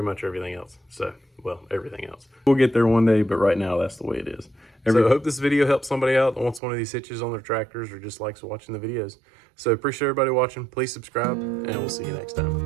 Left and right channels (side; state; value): left; drops out; at 6.6 s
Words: much everything else. So, well, everything else. We'll get there one day, but right now that's the way it is. So I hope this video helps somebody out that wants one of these hitches on their tractors or just likes watching the videos. So appreciate everybody watching. Please subscribe, and we'll see you next